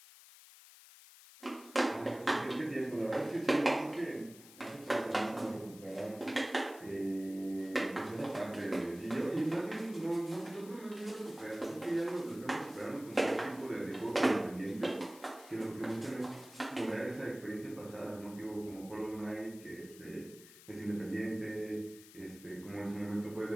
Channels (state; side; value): noise; left; hiss, 19 dB below the sound